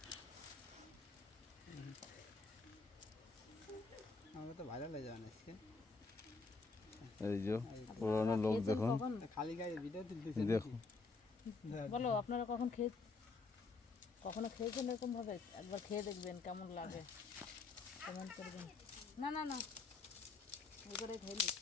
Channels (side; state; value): right; quieter; 4.0 dB